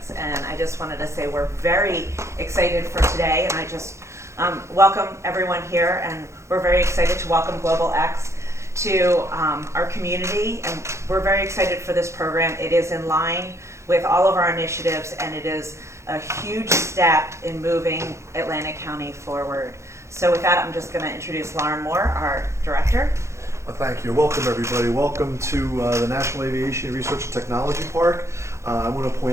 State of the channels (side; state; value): left; late; 0.14 ms